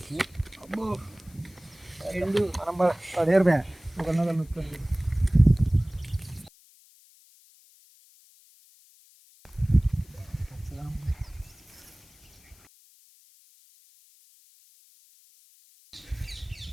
అబ్బో రెండు మనం పడేరు బ్యా ఒకరినొకరు నొక్కండి.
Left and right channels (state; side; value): noise; left; hiss, 27 dB below the sound